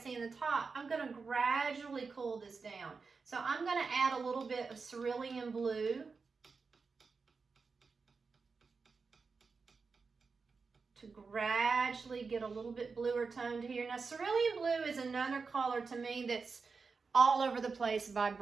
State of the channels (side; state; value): left; quieter; 4.8 dB